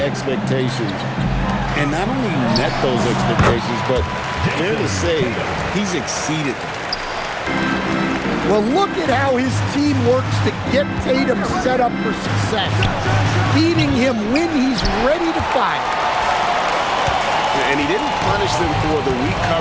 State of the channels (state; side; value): identical; both; correlation 1.00